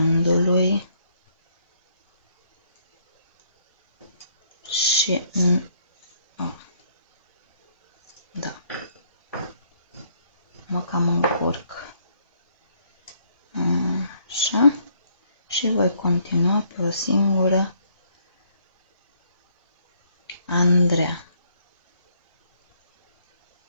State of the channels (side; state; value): both; inverted; correlation -0.68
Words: Și da, mă cam încurc. Așa. Și voi continua pe o singură Andreea.